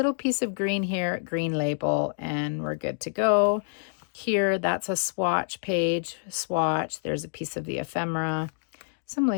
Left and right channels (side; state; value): right; silent; digital silence